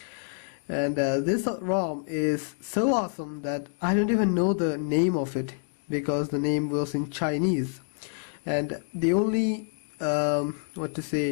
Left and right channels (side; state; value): right; silent; 60 dB below the other